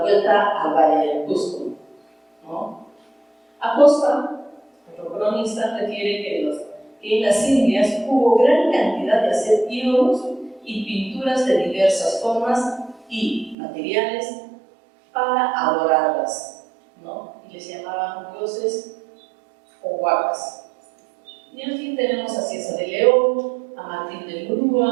al Valle del Cusco, ¿no? Acosta, otro cronista, refiere que en las Indias hubo gran cantidad de hacer ídolos y pinturas de diversas formas y materiales para adorarlas, ¿no? Y les llamaban dioses o huacas. Y en fin, tenemos a Cieza de León, a Martín de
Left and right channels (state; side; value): drops out; left; at 13.6 s